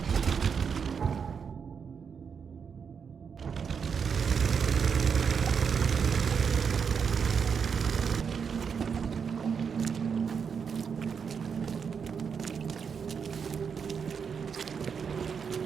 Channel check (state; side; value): quieter; left; 6.5 dB